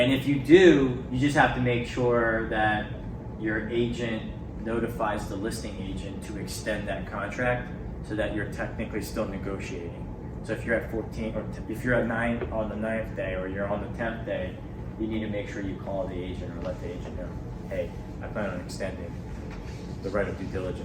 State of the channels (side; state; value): both; identical; correlation 1.00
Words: if you do, you just have to make sure that your agent notifies the listing agent to extend that contract so that you're technically still negotiating. So if you're at 14, or if you're at 9 on the 9th day, or you're on the 10th day, you need to make sure you call the agent or let the agent know, hey, I plan on extending the right of due